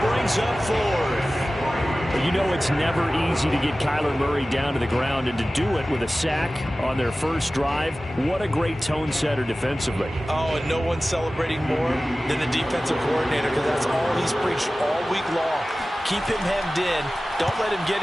brings up 4th. You know it's never easy to get Kyler Murray down to the ground, and to do it with a sack on their first drive, what a great tone setter defensively. Oh, and no one's celebrating more than the defensive coordinator, because that's all he's preached all week long. Keep him hemmed in. Don't let him get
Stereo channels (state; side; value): normal; both; correlation 0.96